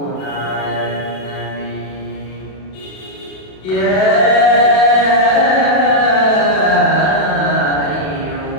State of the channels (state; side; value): late; right; 32 ms